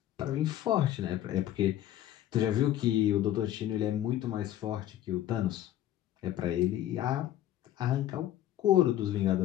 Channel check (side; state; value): right; quieter; 12.6 dB